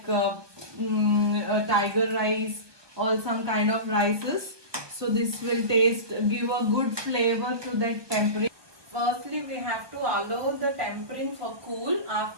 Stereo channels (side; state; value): left; late; 1.2 ms